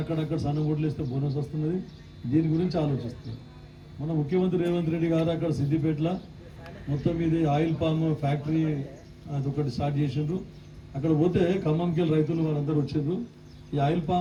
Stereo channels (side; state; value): both; identical; correlation 1.00